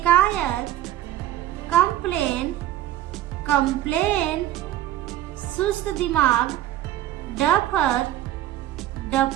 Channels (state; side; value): quieter; left; 13.2 dB